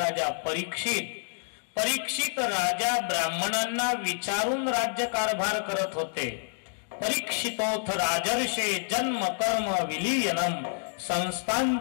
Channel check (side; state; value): right; silent; digital silence